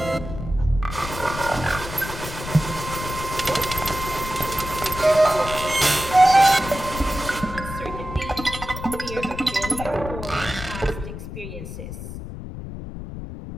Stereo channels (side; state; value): left; noise; rumble, 9 dB below the sound